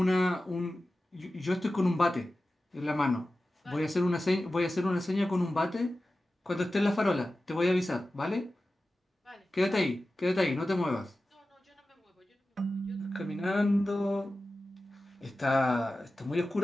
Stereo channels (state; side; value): normal; both; correlation 0.95